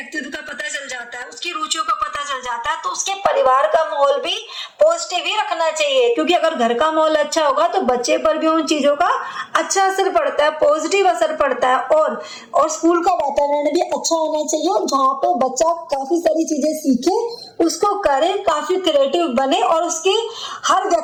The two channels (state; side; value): identical; both; correlation 1.00